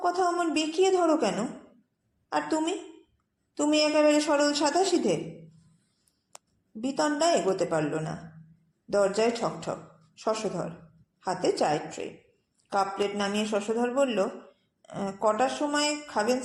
কথা অমন বেঁকিয়ে ধরো কেন? আর তুমি তুমি একেবারে সরল সাদাসিধে। বিতণ্ডা এগোতে পারল না। দরজায় ঠকঠক। শশধর, হাতে চায়ের ট্রে। কাপ প্লেট নামিয়ে শশধর বলল, কটার সময় খাবেন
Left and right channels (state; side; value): identical; both; correlation 1.00